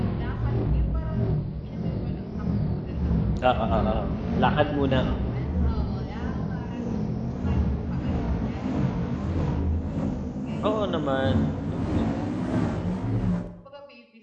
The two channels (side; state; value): both; identical; correlation 1.00